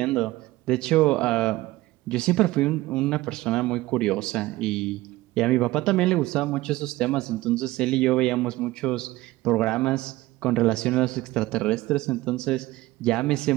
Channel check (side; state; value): left; quieter; 18.1 dB